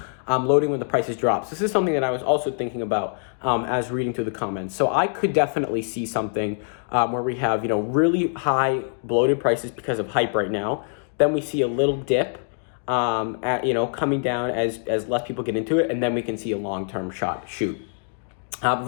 loading when the prices drop. So this is something that I was also thinking about as reading through the comments. So I could definitely see something where we have, you know, really high bloated prices because of hype right now. Then we see a little dip, you know, coming down as less people get into it, and then we can see a long-term shoot.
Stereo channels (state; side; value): silent; right; digital silence